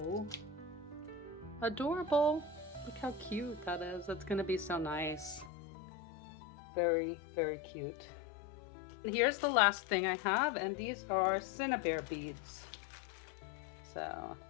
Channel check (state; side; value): drops out; right; at 5.5 s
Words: adorable. Look how cute that is. That's going to be so nice. Very, very cute. And here's the last thing I have, and these are Cinnabar beads. So